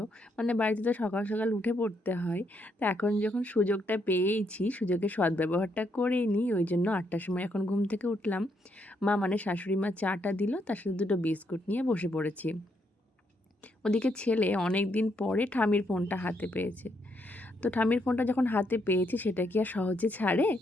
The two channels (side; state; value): both; normal; correlation 0.76